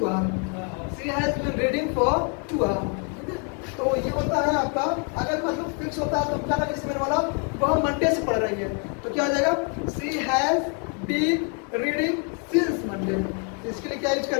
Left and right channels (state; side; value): quieter; right; 39.0 dB